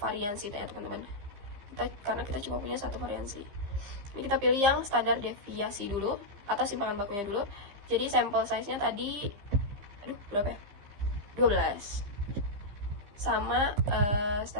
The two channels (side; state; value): left; late; 15 ms